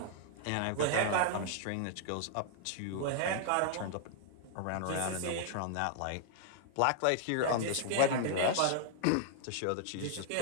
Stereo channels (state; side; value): different; both; correlation 0.00